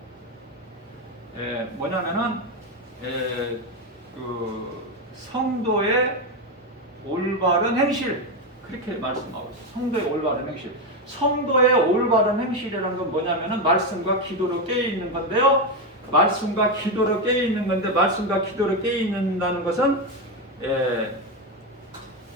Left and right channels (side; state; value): both; normal; correlation 0.10